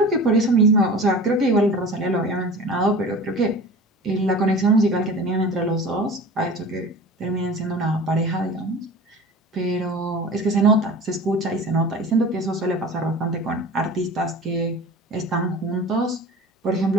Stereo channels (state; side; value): normal; both; correlation 0.37